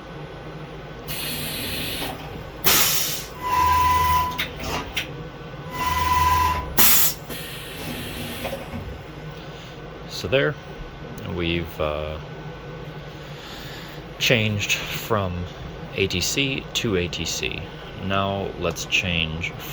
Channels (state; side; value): identical; both; correlation 1.00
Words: So there, we've changed from ATC to ATC. Now let's change